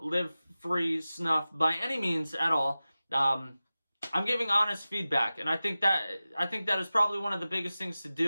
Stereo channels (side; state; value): both; inverted; correlation -0.96